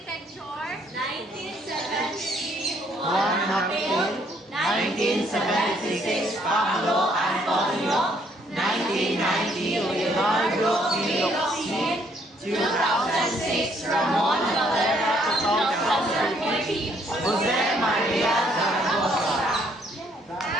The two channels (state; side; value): normal; both; correlation 0.67